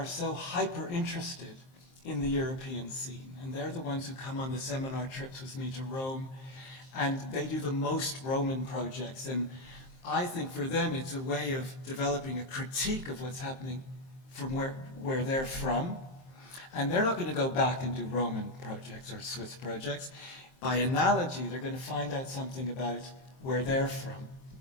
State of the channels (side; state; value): right; late; 23 ms